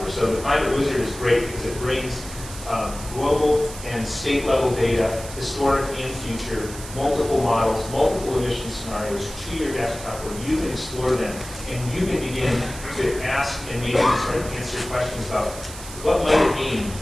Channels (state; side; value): noise; right; hiss, 13 dB below the sound